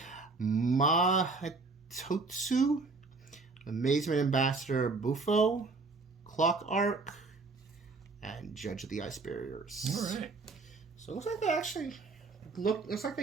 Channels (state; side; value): quieter; left; 3.8 dB